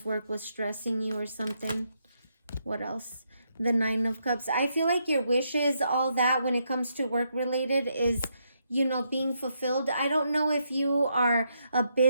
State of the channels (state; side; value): inverted; both; correlation -0.78